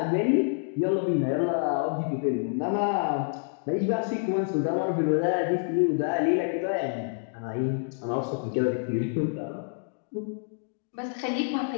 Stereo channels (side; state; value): right; silent; digital silence